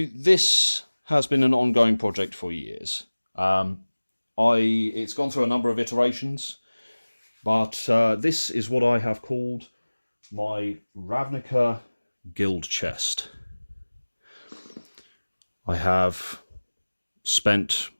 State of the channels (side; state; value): both; inverted; correlation -1.00